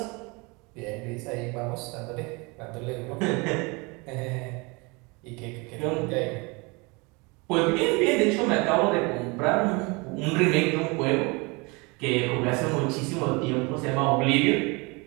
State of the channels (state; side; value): quieter; left; 27.7 dB